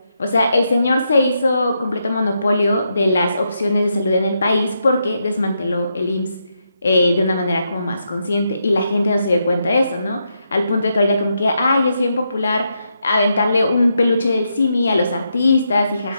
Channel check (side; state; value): both; inverted; correlation -0.82